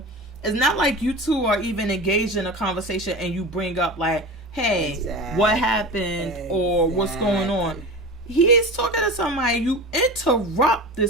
It's not like you two are even engaged in a conversation and you bring up like, hey, what happened or what's going on. He is talking to somebody. You interrupt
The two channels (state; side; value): normal; both; correlation 0.30